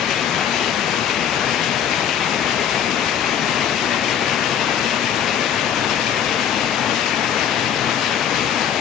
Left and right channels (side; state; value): right; quieter; 9.1 dB